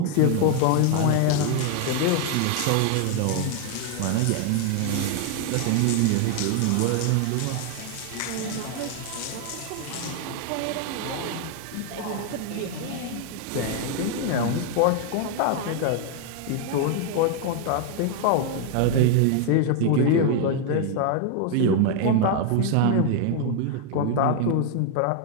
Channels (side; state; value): both; different; correlation 0.00